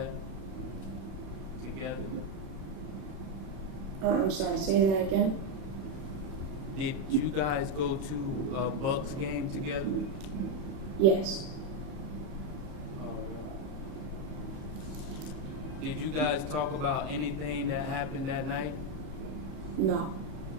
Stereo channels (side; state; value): left; late; 31 ms